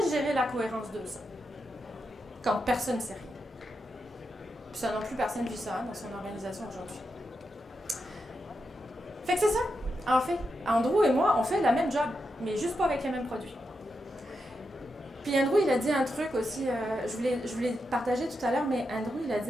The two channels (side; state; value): both; normal; correlation 0.86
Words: gérer la cohérence de ça. Quand personne ne sait rien. Puis ça non plus, personne ne vit ça dans son organisation aujourd'hui. Fait que c'est ça. En fait, Andrew et moi, on fait la même job, mais juste pas avec les mêmes produits. Puis Andrew, il a dit un truc aussi, je voulais partager tout à l'heure, mais Andrew, il a dit